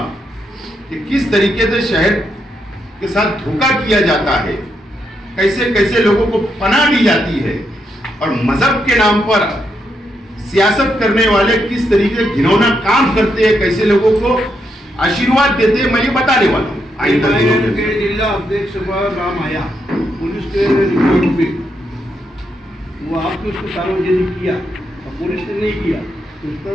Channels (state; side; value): normal; both; correlation 0.80